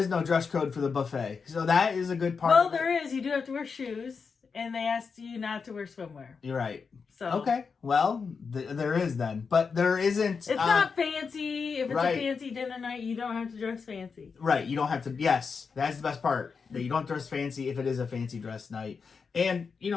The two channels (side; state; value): right; quieter; 5.4 dB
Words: no dress code for the buffet, so that is a good part. Well, there is. You do have to wear shoes, and they asked you not to wear swimwear. You're right. So okay, well, there is then, but there isn't. It's not fancy. If it's right. a fancy dinner night, you don't have to dress fancy. Right, you don't have to. Yes, that's the best part. That you don't dress fancy if it is a fancy dress night, and